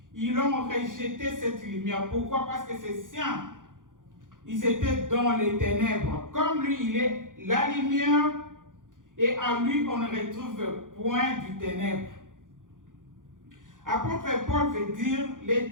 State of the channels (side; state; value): left; late; 0.89 ms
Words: Ils ont rejeté cette lumière. Pourquoi? Parce que ses siens, ils étaient dans les ténèbres. Comme lui, il est la lumière et en lui, on ne retrouve point du ténèbre. Apôtre Paul veut dire, les